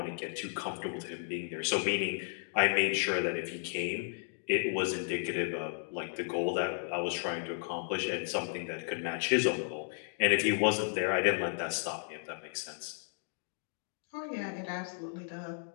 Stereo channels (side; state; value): right; silent; digital silence